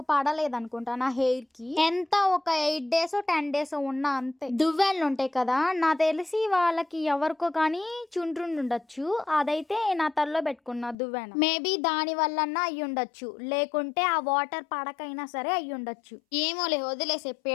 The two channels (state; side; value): drops out; right; at 11.0 s